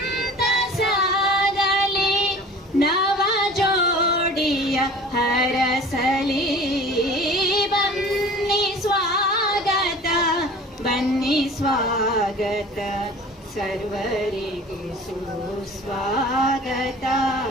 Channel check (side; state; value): both; normal; correlation 0.43